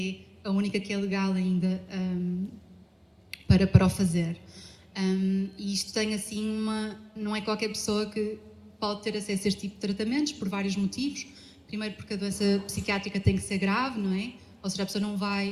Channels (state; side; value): identical; both; correlation 1.00